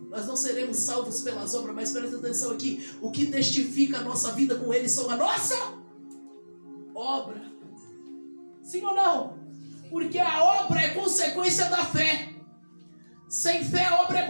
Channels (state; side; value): inverted; both; correlation -1.00